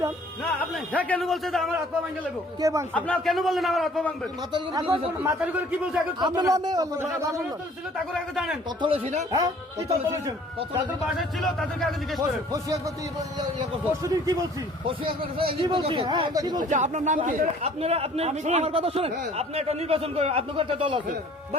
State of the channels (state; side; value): normal; both; correlation 0.54